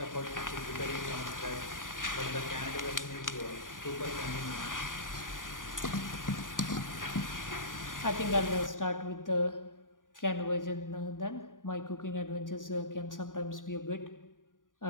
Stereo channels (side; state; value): right; late; 0.89 ms